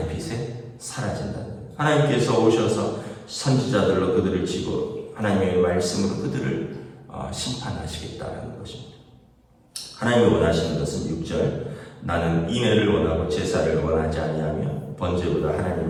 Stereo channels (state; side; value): identical; both; correlation 1.00